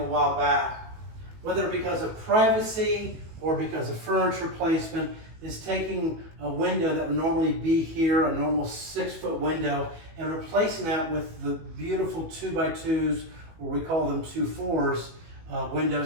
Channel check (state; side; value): late; left; 18 ms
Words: while back, whether because of privacy or because of furniture placement. is taking a window that would normally be here, a normal 6-foot window, and replacing that with the beautiful 2x2s, or we call them 2-4s,